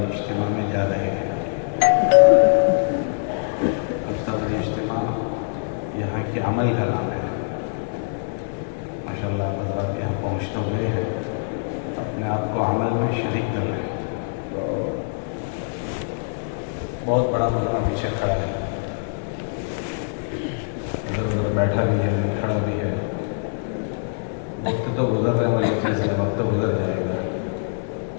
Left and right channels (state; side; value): silent; right; digital silence